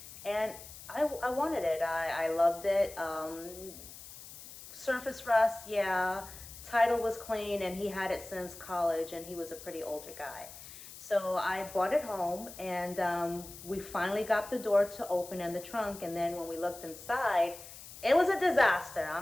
and I wanted it. I loved it. Surface rust, yeah. Title was clean, and he had it since college, and he was a pretty older guy. So I brought it home, and we finally got the door to open and the trunk, and then when we looked inside, it was a disaster.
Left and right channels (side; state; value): left; noise; hiss, 15 dB below the sound